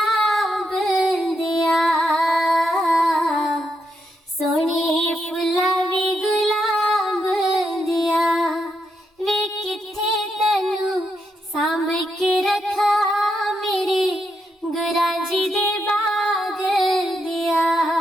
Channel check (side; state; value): both; normal; correlation 0.81